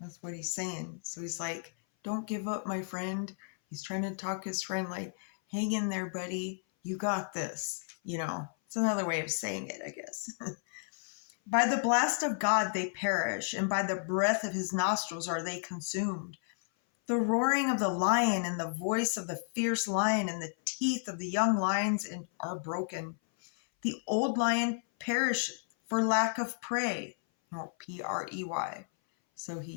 That's what he's saying. So he's like, don't give up, my friend. He's trying to talk his friend like, hang in there, buddy. You got this. It's another way of saying it, I guess. By the blast of God they perish, and by the breath of his nostrils are they consumed. The roaring of the lion and the voice of the fierce lion and the teeth of the young lions are broken. The old lion perisheth for lack of prey. Prey. So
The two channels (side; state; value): right; silent; 56 dB below the other